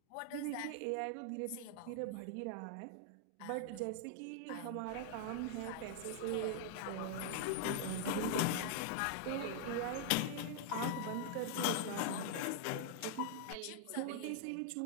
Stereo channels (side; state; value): both; different; correlation -0.01